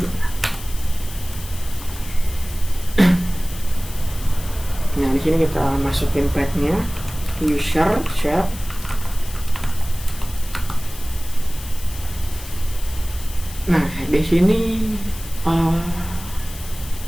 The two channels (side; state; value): left; noise; hiss, 15 dB below the sound